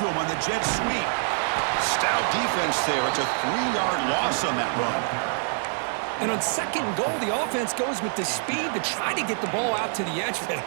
him on the jet sweep. Stout defense there. It's a 3-yard loss on that run. And on second goal, the offense goes with the speed to try to get the ball out to the edge. But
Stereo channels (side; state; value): left; silent; 58 dB below the other